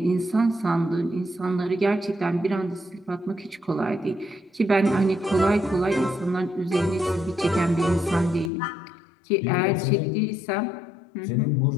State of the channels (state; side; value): drops out; right; at 8.5 s